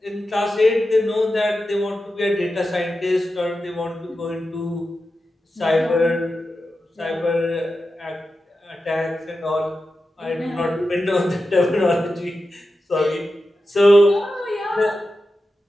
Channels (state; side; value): normal; both; correlation 0.91